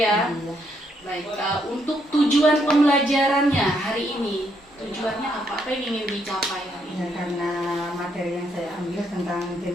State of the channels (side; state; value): both; normal; correlation 0.74